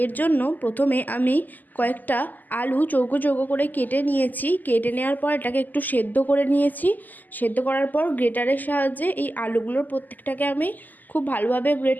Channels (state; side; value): late; right; 0.084 ms